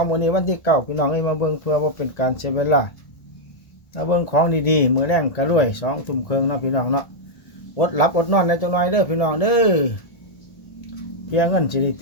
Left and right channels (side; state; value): right; late; 1.8 ms